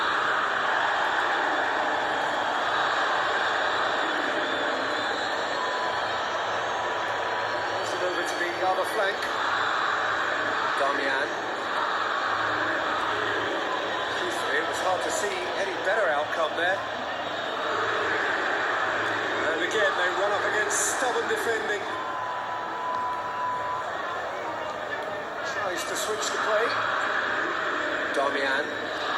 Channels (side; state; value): both; identical; correlation 1.00